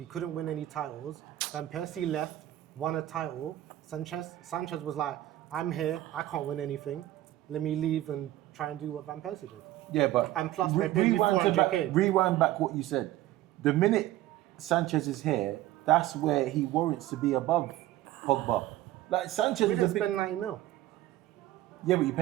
couldn't win any titles. Van Persie left, won a title. Sanchez was like, I'm here, I can't win anything. Let me leave and try and do what Van Persie did. Yeah, but And plus they paid me 400k. Rewind back what you said. The minute Sanchez is here, that's where he warrants to be above Pogba. Like Sanchez We is didn't a big, spend 90 mil, yeah, but you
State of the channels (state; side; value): quieter; left; 14.8 dB